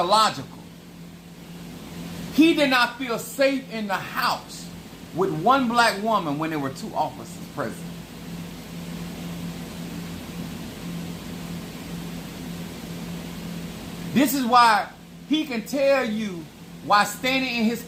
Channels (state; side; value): identical; both; correlation 1.00